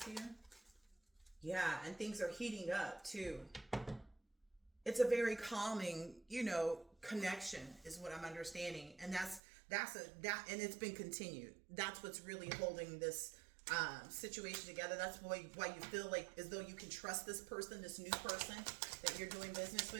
here? Yeah, and things are heating up too. It's a very calming, you know, connection is what I'm understanding. And and it's been continued. That's what's really holding this situation together. That's why you feel like as though you can trust this person, this new person that you're doing business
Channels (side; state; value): left; drops out; at 9.4 s